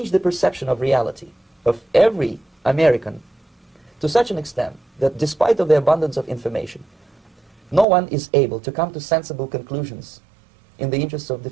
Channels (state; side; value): drops out; left; at 7.9 s